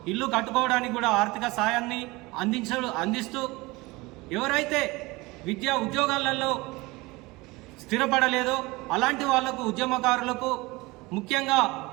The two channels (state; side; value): quieter; left; 22.5 dB